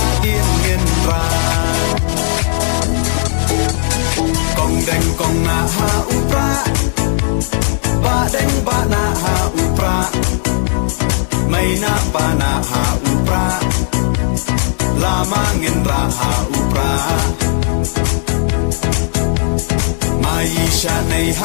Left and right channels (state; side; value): silent; right; digital silence